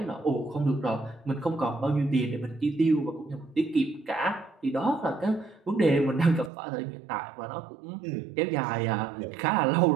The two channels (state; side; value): drops out; left; at 6.5 s